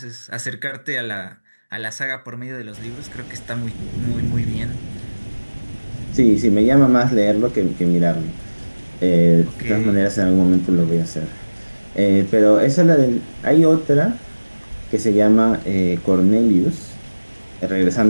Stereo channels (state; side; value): inverted; both; correlation -1.00